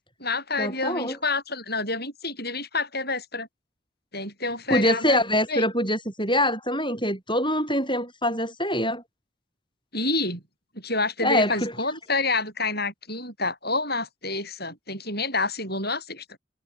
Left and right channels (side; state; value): both; normal; correlation 0.14